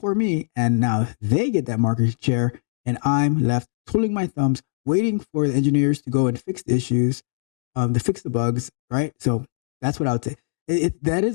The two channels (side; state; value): right; silent; digital silence